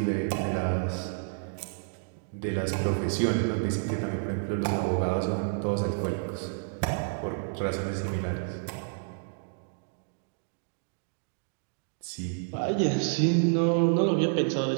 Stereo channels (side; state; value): left; silent; digital silence